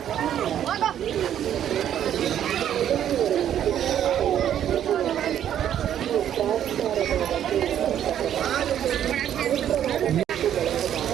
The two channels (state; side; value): quieter; left; 10.3 dB